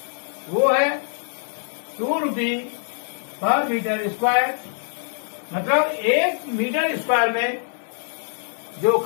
वो है 2 रुपये पर मीटर स्क्वायर, मतलब 1 मीटर स्क्वायर में जो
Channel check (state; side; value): silent; right; 62 dB below the other